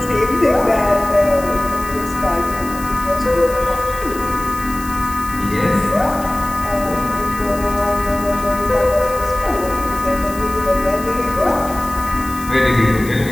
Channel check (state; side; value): noise; left; hiss, 15 dB below the sound